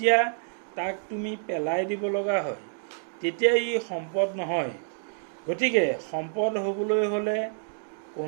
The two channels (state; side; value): silent; left; digital silence